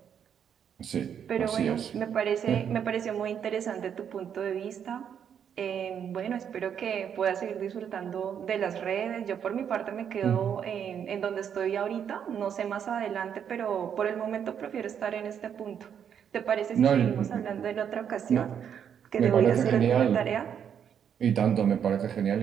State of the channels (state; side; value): quieter; left; 8.3 dB